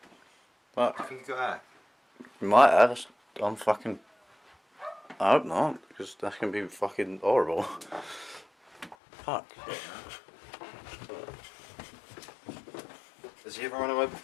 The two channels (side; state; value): right; drops out; at 9.0 s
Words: But I think he got out. he might have. I'm fucking. I hope not, because that's gonna be fucking horrible. Fuck. Has he ever run away